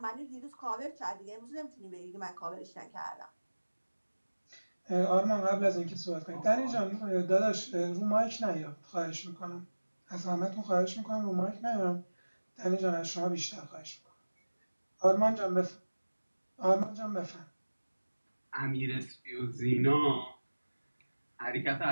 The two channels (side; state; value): both; inverted; correlation -1.00